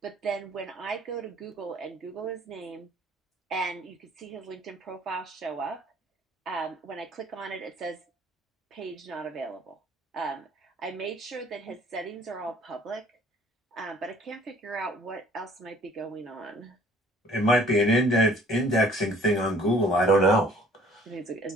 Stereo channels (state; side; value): normal; both; correlation 0.56